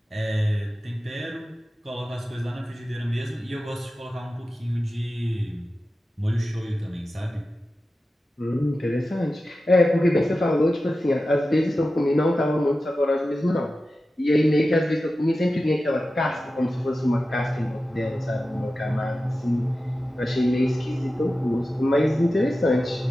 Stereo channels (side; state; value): both; normal; correlation 0.93